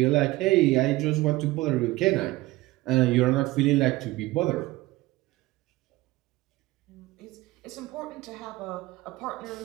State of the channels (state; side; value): quieter; left; 19.0 dB